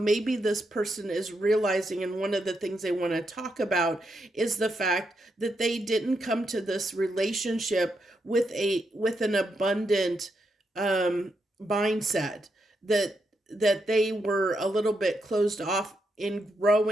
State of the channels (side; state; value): both; normal; correlation 0.82